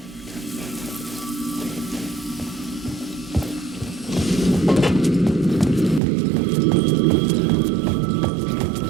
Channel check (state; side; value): drops out; left; at 6.0 s